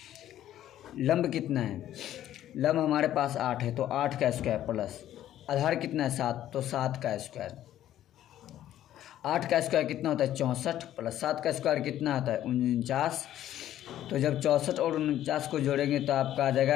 लंब कितना है, लंब हमारे पास 8 है, तो 8 का स्क्वायर प्लस आधार कितना है 7, तो 7 का स्क्वायर। 8 का स्क्वायर कितना होता है 64, प्लस 7 का स्क्वायर कितना होता है 49। तो जब 64 और 49 को जोड़ेंगे तो आपका आ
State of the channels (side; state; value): right; quieter; 12.3 dB